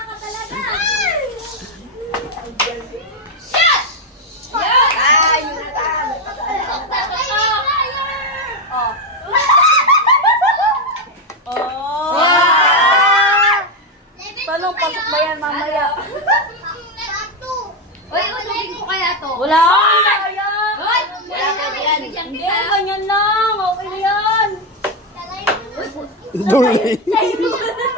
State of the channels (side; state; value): both; normal; correlation 0.08